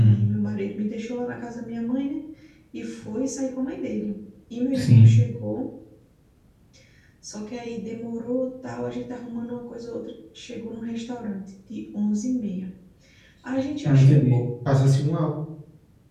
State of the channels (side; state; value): both; identical; correlation 1.00